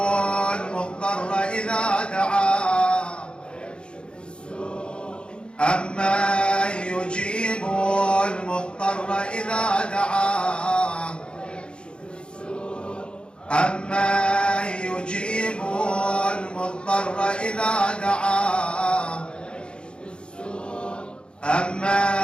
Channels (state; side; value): late; right; 0.054 ms